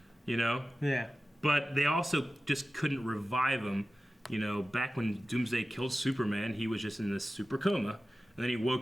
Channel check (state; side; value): normal; both; correlation 0.95